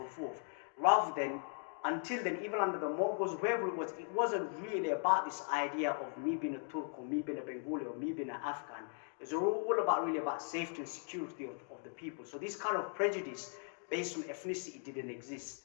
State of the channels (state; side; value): silent; right; 52 dB below the other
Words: forth, rather than, until then, even under the Mongols, whoever it wasn't really about this idea of me being a Turk or me being a Bengali or me being an Afghan. It's all about safety and security of the people. So this kind of prejudice based on ethnicity didn't